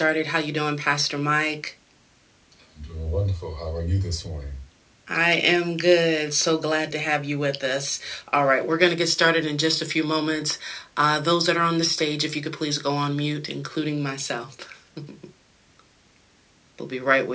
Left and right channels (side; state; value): both; identical; correlation 1.00